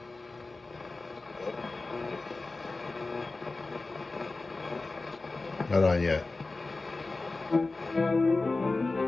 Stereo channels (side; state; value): right; quieter; 3.4 dB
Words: not on yet.